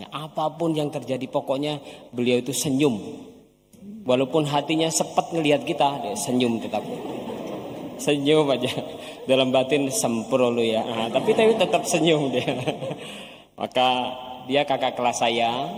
Apapun yang terjadi pokoknya beliau itu senyum. Walaupun hatinya sepet ngelihat kita, dia senyum tetap. Senyum aja. Dalam batin sempro lu ya. Tapi tetap senyum dia. Maka dia kakak kelas saya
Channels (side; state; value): both; identical; correlation 1.00